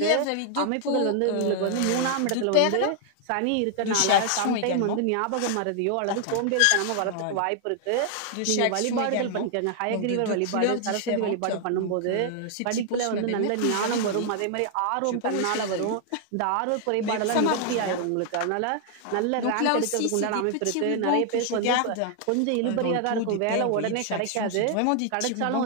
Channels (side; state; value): both; different; correlation 0.00